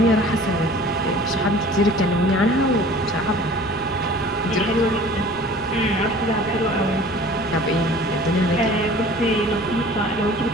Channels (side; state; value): left; noise; rumble, 21 dB below the sound